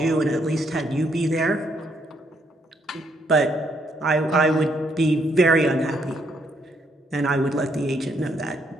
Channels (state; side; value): normal; both; correlation 0.73